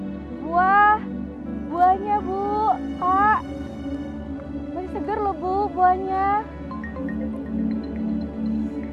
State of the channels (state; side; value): identical; both; correlation 1.00